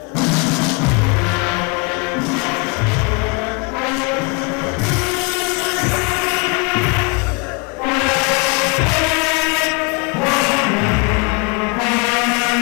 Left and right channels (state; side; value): quieter; right; 31.5 dB